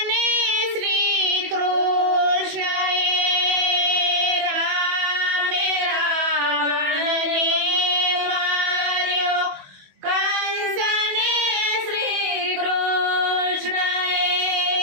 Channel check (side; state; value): left; late; 21 ms